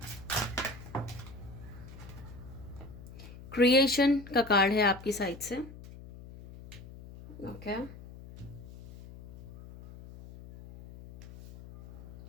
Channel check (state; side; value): noise; left; hum, 16 dB below the sound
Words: क्रिएशन का कार्ड है आपकी साइड से। ओके,